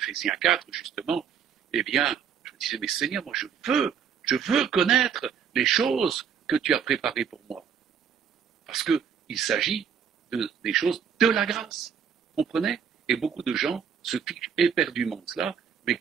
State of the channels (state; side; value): quieter; left; 7.4 dB